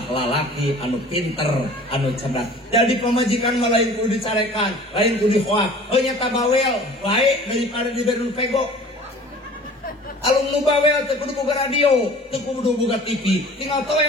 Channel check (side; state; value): both; normal; correlation 0.46